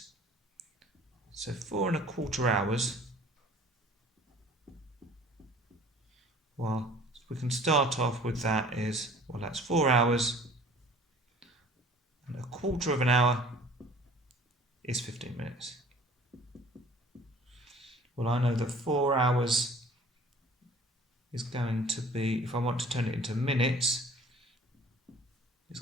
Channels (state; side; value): normal; both; correlation 0.49